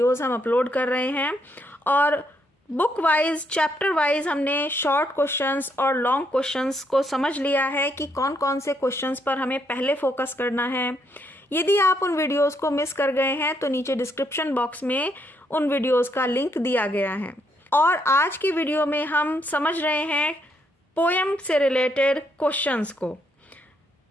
हम अपलोड कर रहे हैं और बुक वाइज चैप्टर वाइज हमने शॉर्ट क्वेश्चंस और लॉन्ग क्वेश्चंस को समझ लिया है कि कौन कौन से क्वेश्चंस पर हमें पहले फोकस करना है। यदि आप उन वीडियोस को मिस कर गए हैं तो नीचे डिस्क्रिप्शन बॉक्स में उन वीडियोस का लिंक दिया गया है। और आज की वीडियो में हम समझ रहे हैं पोएम से रिलेटेड क्वेश्चंस को।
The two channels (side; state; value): both; normal; correlation 0.75